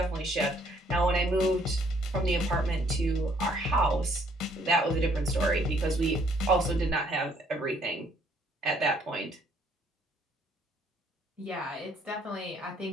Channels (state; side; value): normal; both; correlation 0.64